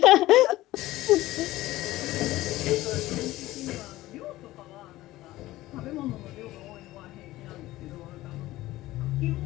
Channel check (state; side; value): quieter; right; 16.9 dB